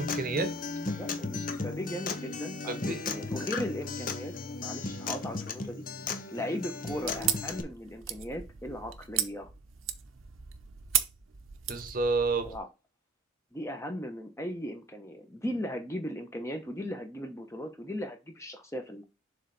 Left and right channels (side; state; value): both; normal; correlation 0.49